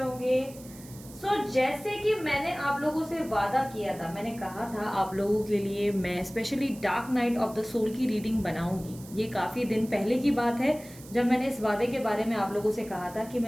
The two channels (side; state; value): right; noise; hiss, 19 dB below the sound